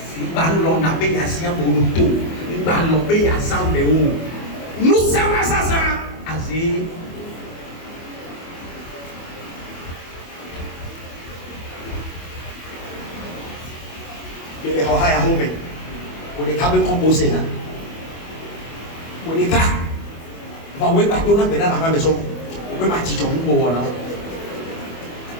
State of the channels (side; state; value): right; late; 24 ms